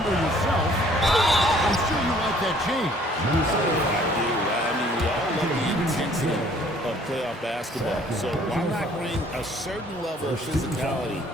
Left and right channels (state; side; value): normal; both; correlation 0.58